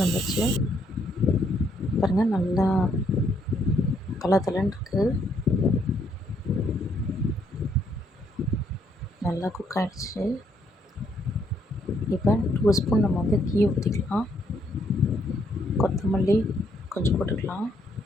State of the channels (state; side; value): normal; both; correlation 0.71